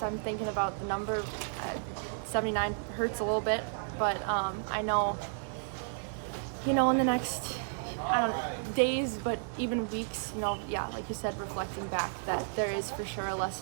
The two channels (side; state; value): left; silent; 56 dB below the other